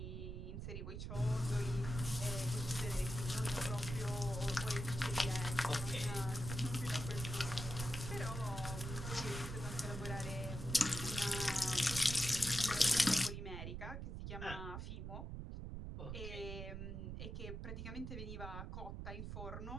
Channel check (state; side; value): noise; right; rumble, 6 dB below the sound